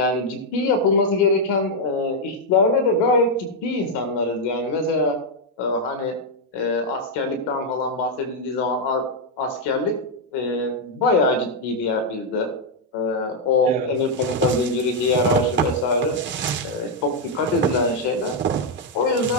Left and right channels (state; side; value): normal; both; correlation -0.01